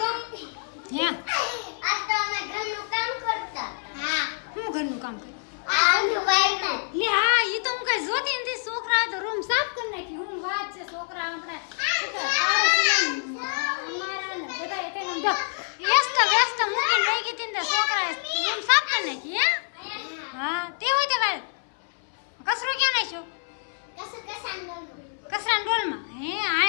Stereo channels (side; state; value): right; silent; 61 dB below the other